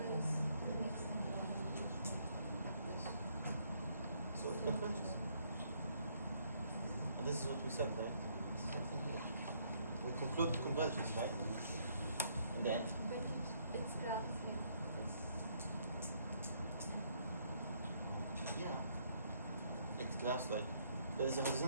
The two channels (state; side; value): inverted; both; correlation -0.69